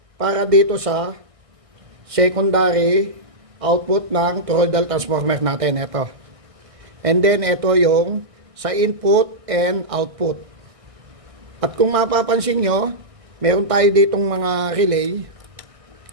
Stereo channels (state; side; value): late; left; 1.6 ms